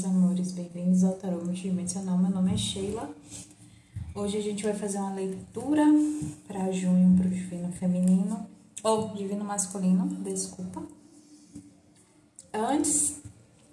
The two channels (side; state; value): both; identical; correlation 1.00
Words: amores, bem-vindos ao Tarô Multidimensional. Meu nome é Sheila. Hoje a gente vai fazer uma leitura para junho, para o Divino Feminino, ou Divino Masculino, desculpa. Antes,